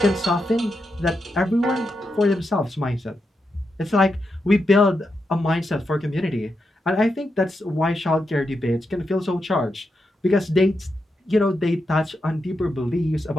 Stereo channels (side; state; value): both; normal; correlation 0.85